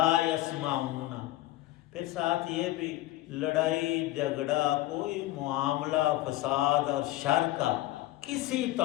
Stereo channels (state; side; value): quieter; right; 16.5 dB